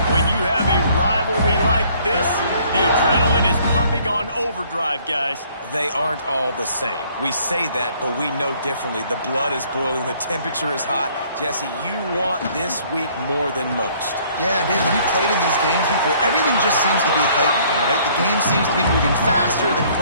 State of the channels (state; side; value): inverted; both; correlation -0.60